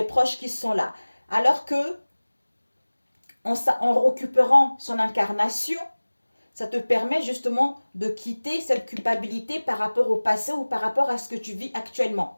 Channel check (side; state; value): both; inverted; correlation -1.00